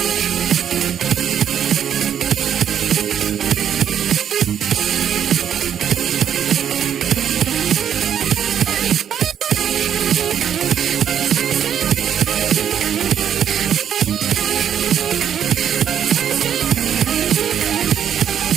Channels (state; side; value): quieter; left; 9.1 dB